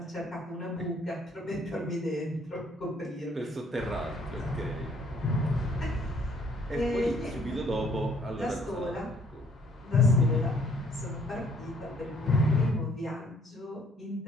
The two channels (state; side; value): normal; both; correlation 0.63